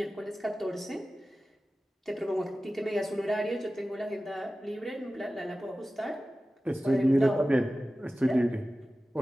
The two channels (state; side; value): normal; both; correlation 0.95